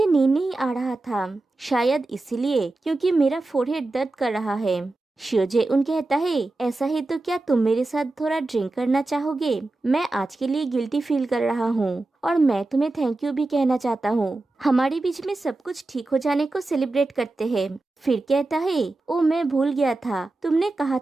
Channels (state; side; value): quieter; left; 3.0 dB